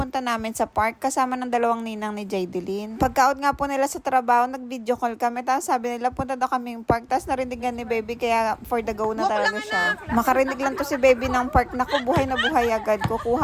namin sa park kasama ng dalawang ninang ni Jaydelyn. Pagka-out nga po nila sa trabaho, nag-video call kami. Tapos sabi nila, punta daw kaming park. Tapos narindigan ni baby, kaya for the go na talaga siya. Makarinig lang to si baby ng park. Naku, buhay na buhay agad.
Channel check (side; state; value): both; identical; correlation 1.00